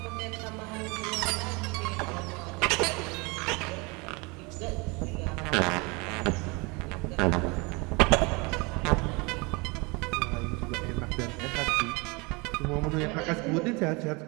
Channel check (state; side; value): quieter; left; 27.8 dB